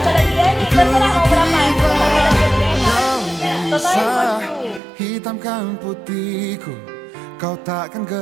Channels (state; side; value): drops out; left; at 4.8 s